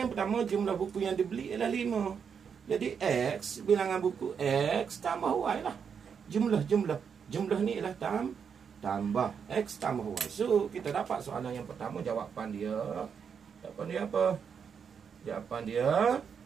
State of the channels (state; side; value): quieter; left; 6.8 dB